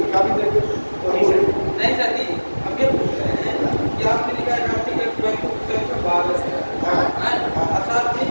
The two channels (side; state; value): both; inverted; correlation -1.00